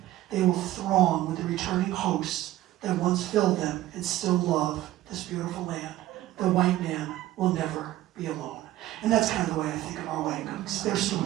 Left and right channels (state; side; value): quieter; left; 14.9 dB